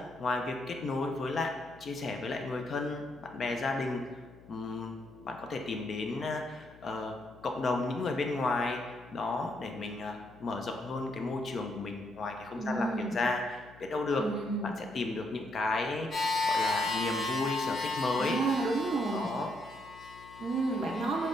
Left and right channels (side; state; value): left; noise; hum, 21 dB below the sound